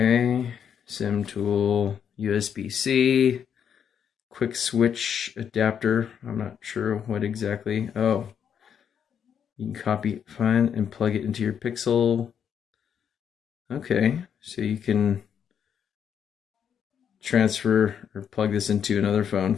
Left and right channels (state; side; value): quieter; right; 8.1 dB